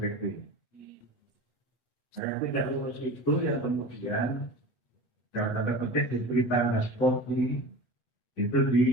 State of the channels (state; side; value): late; right; 8.6 ms